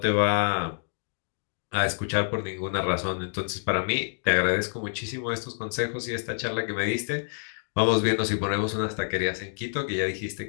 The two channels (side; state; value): right; silent; digital silence